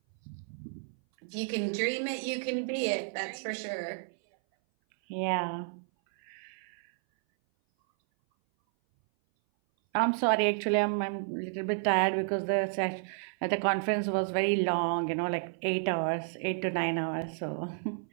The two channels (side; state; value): left; silent; 57 dB below the other